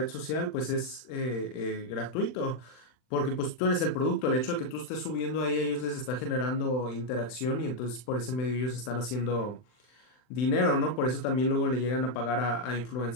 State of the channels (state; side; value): late; right; 39 ms